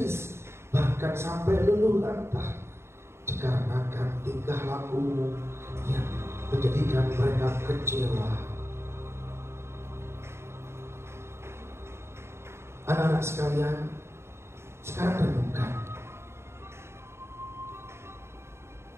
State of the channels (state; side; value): late; left; 0.13 ms